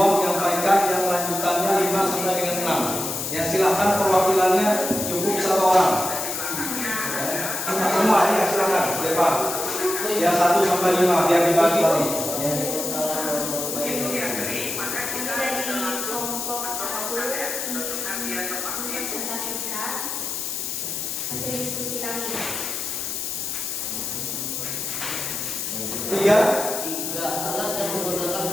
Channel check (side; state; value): left; noise; hiss, 3 dB below the sound